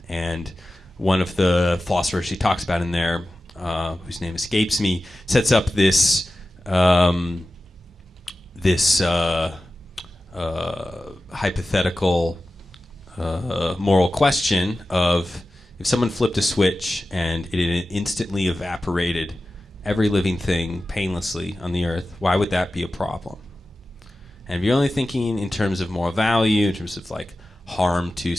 And one of the philosophers she talks about in there, whose name escapes me, sets up this hypothetical moral question of, if someone flipped a switch and it instantly evaporated every living thing painlessly on the earth, why would that be a problem? And if you're only thinking in terms of moral value, in terms of like harm to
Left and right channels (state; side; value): normal; both; correlation 0.94